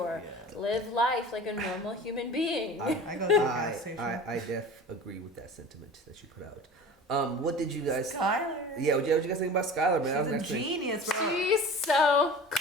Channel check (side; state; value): both; normal; correlation 0.37